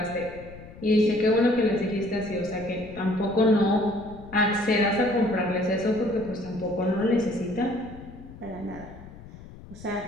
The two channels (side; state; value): left; noise; rumble, 17 dB below the sound